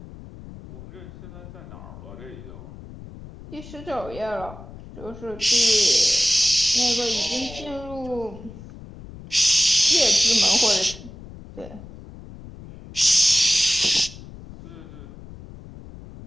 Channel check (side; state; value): left; noise; rumble, 16 dB below the sound